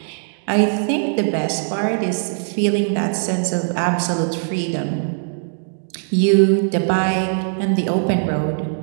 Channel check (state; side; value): silent; left; digital silence